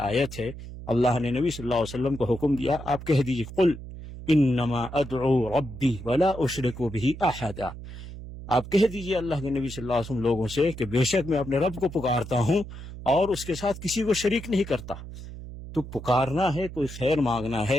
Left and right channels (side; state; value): right; noise; hum, 12 dB below the sound